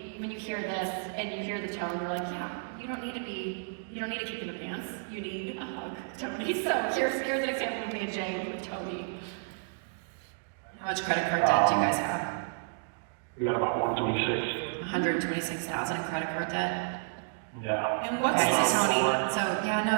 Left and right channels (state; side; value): silent; left; digital silence